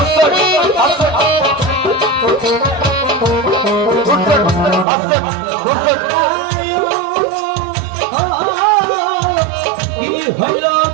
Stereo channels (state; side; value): drops out; left; at 4.9 s